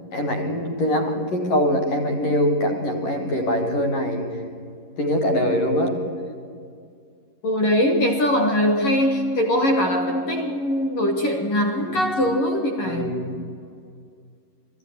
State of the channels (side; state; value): right; late; 11 ms